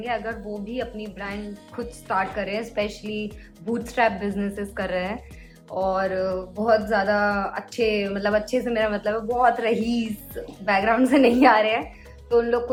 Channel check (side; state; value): both; identical; correlation 1.00